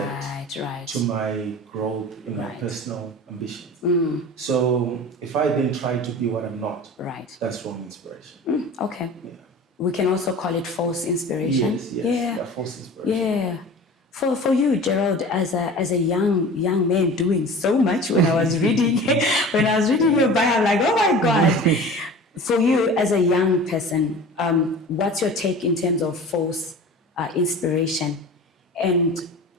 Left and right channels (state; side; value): normal; both; correlation 0.38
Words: Right. to my growth in my Right. personal ambitions. So if I then try to be what I'm not, Right. that's wrong inspiration. Okay. Yeah. We can also call it false inspiration. Yes. Yeah. False inspiration. Yeah. For you, Gerald, as a young man doing so much, when I was reading your bio, I'm like, oh my God. For you as a young person, what's your take in terms of false inspiration, and